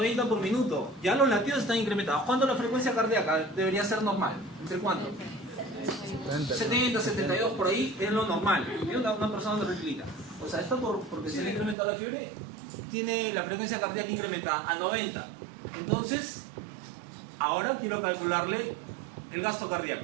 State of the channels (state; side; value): drops out; left; at 11.8 s